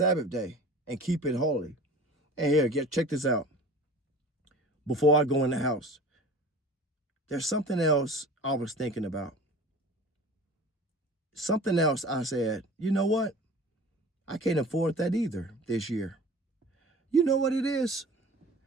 day and keep it holy. And here, check this out. Before I go in the house, there's something else I was thinking about. Something else I said, you know what? I can't afford that either this year. You know what it is?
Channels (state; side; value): normal; both; correlation 0.40